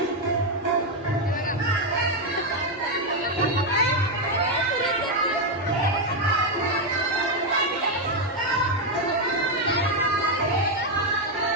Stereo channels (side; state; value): both; normal; correlation 0.04